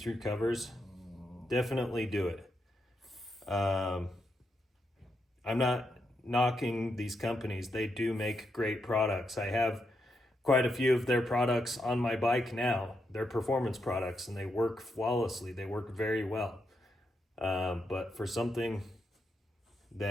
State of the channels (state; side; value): normal; both; correlation 0.82